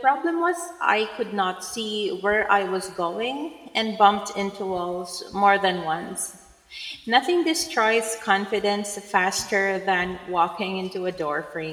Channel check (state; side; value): identical; both; correlation 1.00